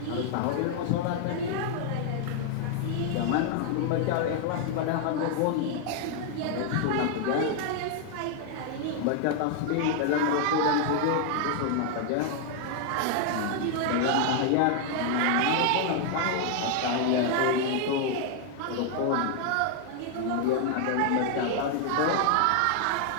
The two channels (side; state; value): both; different; correlation 0.00